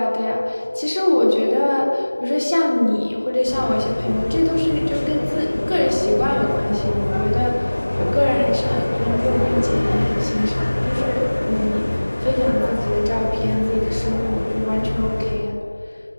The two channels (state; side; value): inverted; both; correlation -1.00